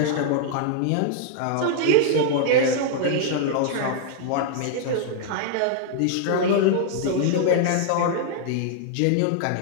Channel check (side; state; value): both; different; correlation -0.01